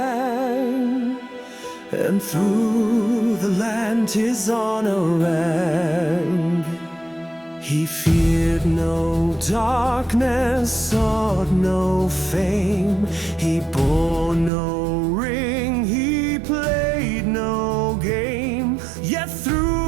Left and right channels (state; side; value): drops out; left; at 14.5 s